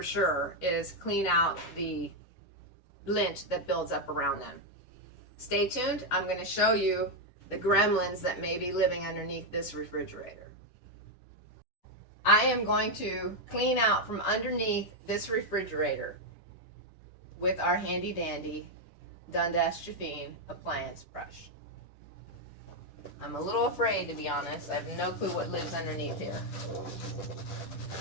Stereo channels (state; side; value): late; right; 10 ms